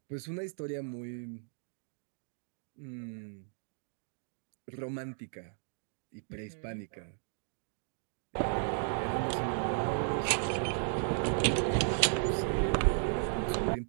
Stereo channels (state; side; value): silent; left; 54 dB below the other